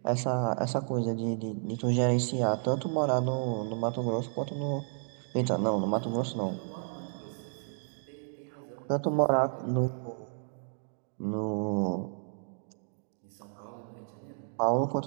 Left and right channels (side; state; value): left; silent; digital silence